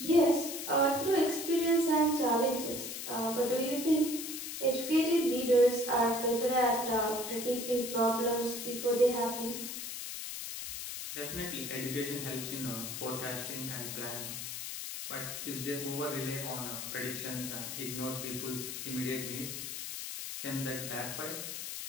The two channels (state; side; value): noise; left; hiss, 6 dB below the sound